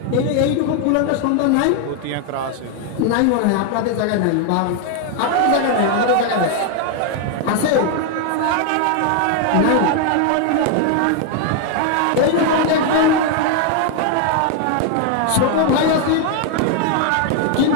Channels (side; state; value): both; different; correlation 0.01